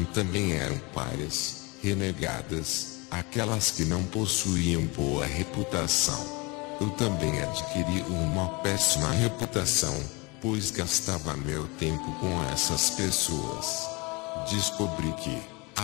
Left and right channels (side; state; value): right; quieter; 27.2 dB